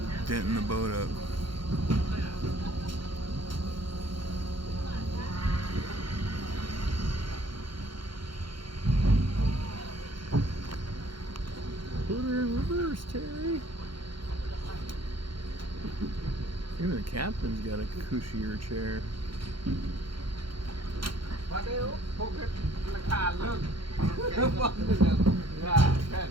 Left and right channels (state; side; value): late; left; 0.73 ms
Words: denting the boat up. Put her in reverse, Terry. Even the captain's got a cushier chair. Oh,